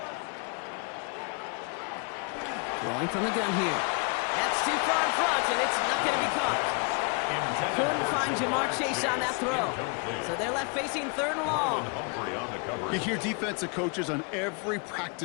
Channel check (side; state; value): right; quieter; 34.8 dB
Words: Throwing from the gun here. That's too far in front, and it's not going to be caught. Couldn't find Jamar Chase on that throw. So they're left facing third and long. You hear defensive coaches on every